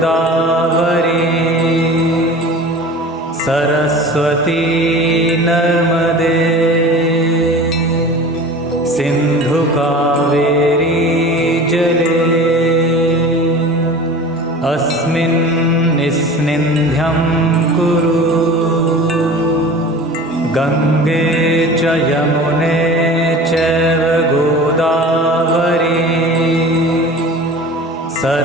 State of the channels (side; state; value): both; normal; correlation 0.38